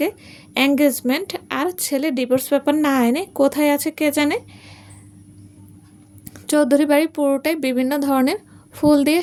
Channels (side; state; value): both; identical; correlation 1.00